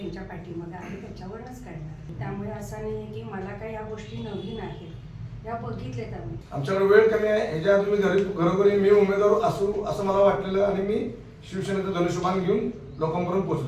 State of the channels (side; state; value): both; identical; correlation 1.00